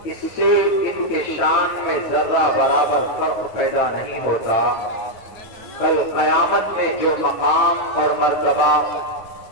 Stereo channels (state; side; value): late; right; 9.1 ms